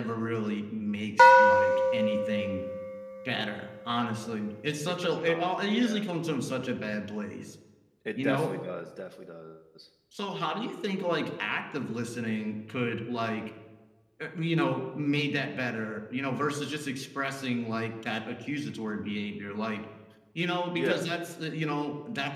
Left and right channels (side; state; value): both; identical; correlation 1.00